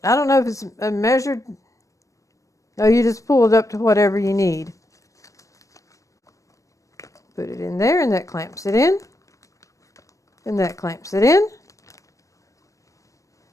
I don't know if it's a measured. No, you just pull it up to whatever you need. Put it in there and that clamps it in. And that clamps it in.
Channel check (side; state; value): right; late; 0.16 ms